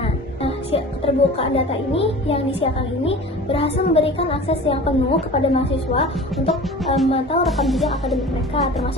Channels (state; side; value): normal; both; correlation 0.39